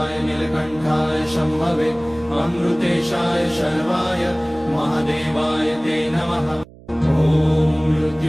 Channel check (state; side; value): noise; right; hum, 22 dB below the sound